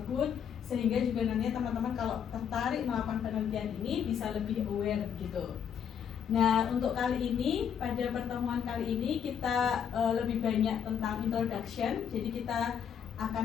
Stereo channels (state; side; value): quieter; right; 8.1 dB